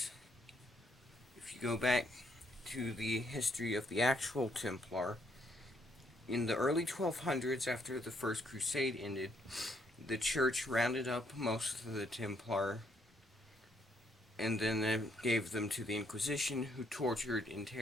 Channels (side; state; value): both; normal; correlation 0.71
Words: if you go back to the history of the actual Templar, in the early 1200s, after the First Crusade ended, the church rounded up most of the Templar and then gave them to the Inquisition, who tortured,